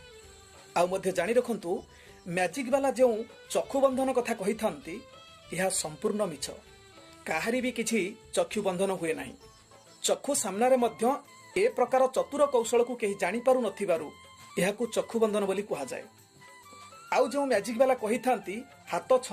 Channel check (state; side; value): identical; both; correlation 1.00